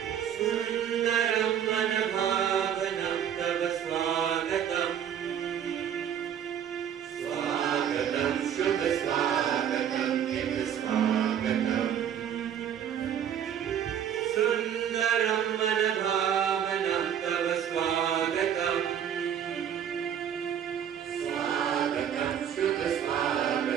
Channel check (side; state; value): left; quieter; 9.2 dB